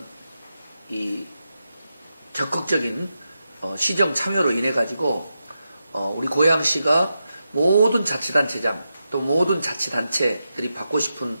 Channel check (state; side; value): inverted; both; correlation -0.88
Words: 이 적극적인 시정 참여로 인해 가지고 우리 고향시가 모든 자치단체장 또 모든 자치단체들이 받고 싶은